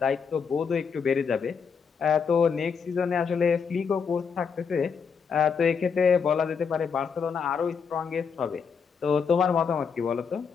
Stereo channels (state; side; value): quieter; right; 6.1 dB